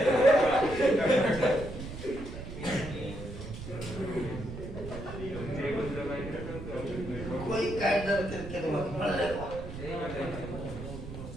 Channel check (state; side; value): noise; right; rumble, 10 dB below the sound